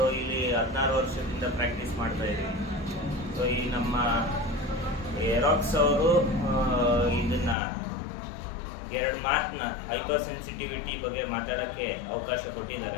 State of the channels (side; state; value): right; drops out; at 7.6 s